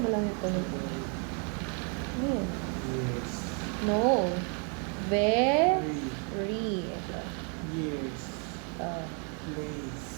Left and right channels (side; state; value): left; quieter; 39.0 dB